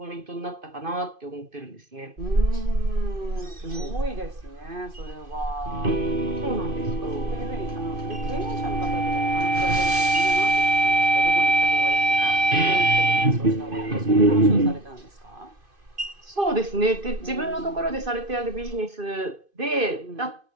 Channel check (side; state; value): left; late; 2.5 ms